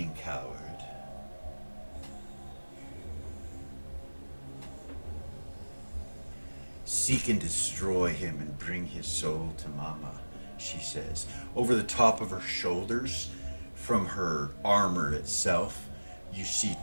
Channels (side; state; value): both; inverted; correlation -1.00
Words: coward. Seek and destroy him and bring his soul to Mama, she says. Over the top of her shoulders, from her armor itself, you see